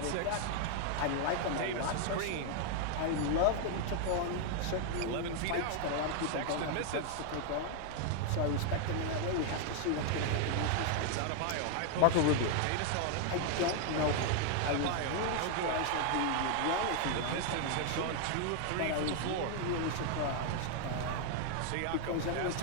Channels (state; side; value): different; both; correlation 0.00